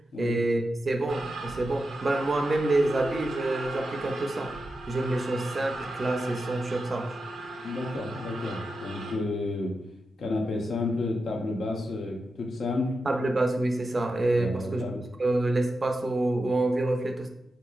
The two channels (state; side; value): normal; both; correlation 0.89